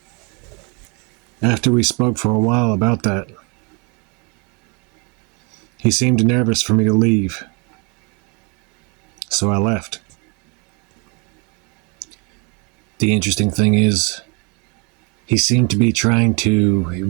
After we spoke for a while about that, he seemed nervous for me to leave, so I left. The interesting thing is, he seemed to be trying to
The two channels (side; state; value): left; quieter; 32.5 dB